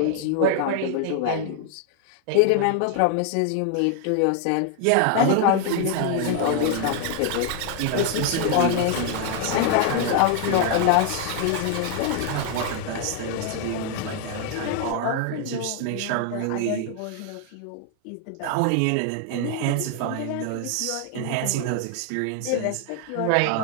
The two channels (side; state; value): both; different; correlation 0.00